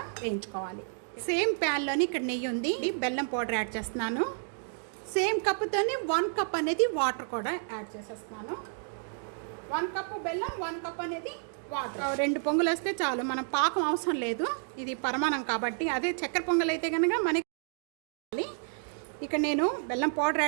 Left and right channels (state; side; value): silent; left; digital silence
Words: వేయించుకోవాలి. సేమ్ ప్యాన్లోని ఇక్కడ నెయ్యి ఉంది. బెల్లం పౌడర్ యాడ్ చేస్తున్నాను. సేమ్ కప్పుతోనే 1 కప్ అనేది వాటర్ కూడా యాడ్ చేసేస్తున్నాను. 1 కప్పు బెల్లం, 1 కప్ అనేది వాటర్. 2 పొంగులు వస్తే చాలు, మనం పాకం అవసరం లేదు. ఇది పరమాన్నం కాబట్టి. అదే చక్కెర పొంగల్ అయితే కనుక మనకి ఇక్కడ నేను బెల్లం పౌడర్